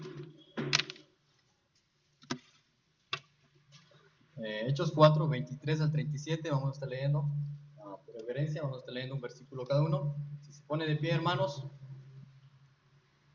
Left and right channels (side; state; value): both; identical; correlation 1.00